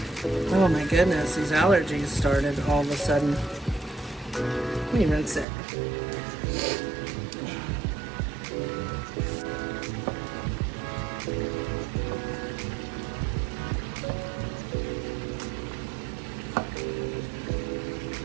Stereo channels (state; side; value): drops out; left; at 5.5 s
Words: Oh my goodness, these allergies started all of a sudden. Let me rinse it.